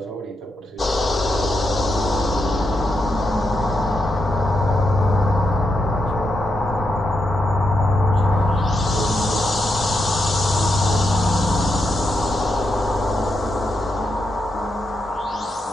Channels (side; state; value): both; normal; correlation 0.83